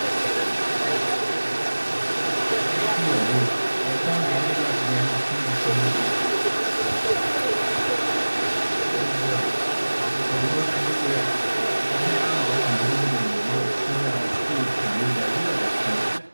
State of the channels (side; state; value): both; inverted; correlation -1.00